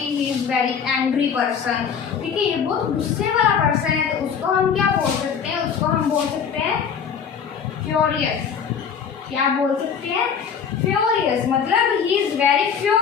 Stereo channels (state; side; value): quieter; right; 7.0 dB